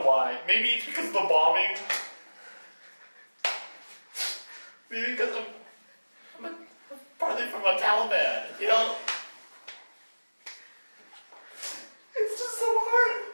why. Maybe it's because of the bombing. Maybe because I'm partly from a Taliban, you know? It's just so hard.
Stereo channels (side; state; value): both; inverted; correlation -1.00